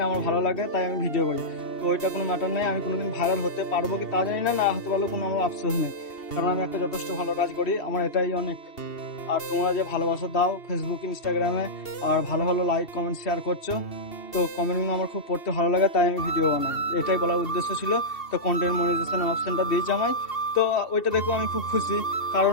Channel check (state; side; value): late; right; 2.7 ms